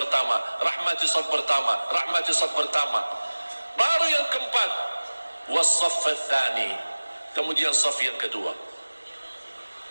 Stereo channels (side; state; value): both; inverted; correlation -1.00